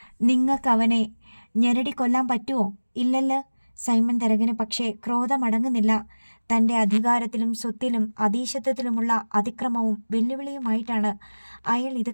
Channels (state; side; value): inverted; both; correlation -1.00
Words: നിങ്ങൾക്കവനെ ഞെരടി കൊല്ലാൻ പറ്റുമോ? ഇല്ലല്ലോ. സൈമൺ തരകന് പക്ഷേ ക്രോധമടങ്ങുന്നില്ല. തൻ്റെ അധികാരത്തിലും സ്വത്തിലും അധീശത്വത്തിലുമുള്ള അതിക്രമവും വെല്ലുവിളിയുമായിട്ടാണ് അയാൾ ഇത്